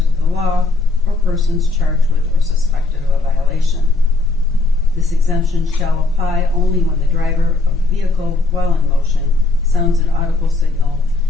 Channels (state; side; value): quieter; right; 3.5 dB